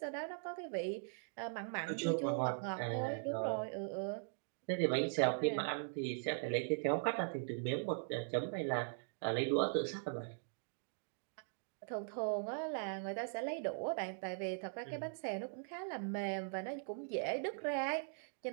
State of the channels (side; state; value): left; silent; digital silence